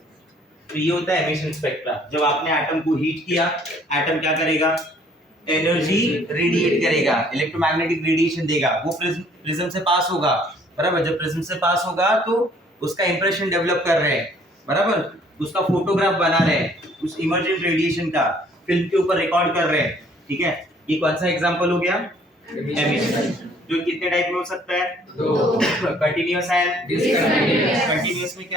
तो ये होता है एमिशन स्पेक्ट्रा। जब आपने एटम को हीट किया, एटम क्या करेगा? एनर्जी रेडिएट करेगा, इलेक्ट्रोमैग्नेटिक रेडिएशन देगा, वो प्रिज्म से पास होगा, बराबर। जब प्रिज्म से पास होगा तो उसका इंप्रेशन डेवलप कर रहे हैं, बराबर, उसका फोटोग्राफ बना रहे हैं, उस इमर्जेंट रेडिएशन का फिल्म के ऊपर रिकॉर्ड कर रहे हैं, ठीक है। ये कौन सा एग्जांपल हो गया? एमिशन। जो कितने टाइप में हो सकता है? दो। Continuous and discontinuous. कंटीन्यूअस में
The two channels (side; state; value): both; normal; correlation 0.59